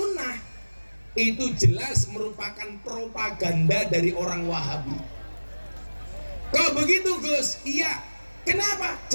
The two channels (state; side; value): inverted; both; correlation -1.00